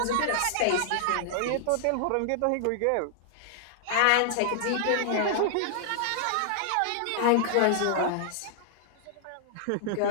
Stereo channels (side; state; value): both; different; correlation -0.01